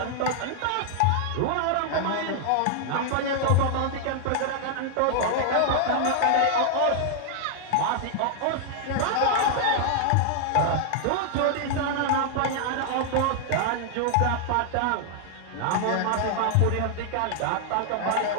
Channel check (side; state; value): both; different; correlation 0.00